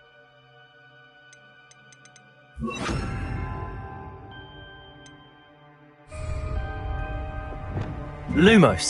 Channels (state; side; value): identical; both; correlation 1.00